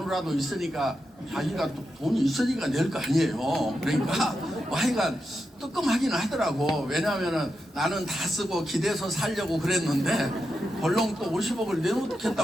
있으니까 자기가 또 돈이 있으니까 낼 거 아니에요. 그러니까 뭐 하여간 뜨끔하긴 하더라고. 왜냐면은 나는 다 쓰고 기대서 살려고 그랬는데 벌렁 또 50억을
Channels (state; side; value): normal; both; correlation 0.87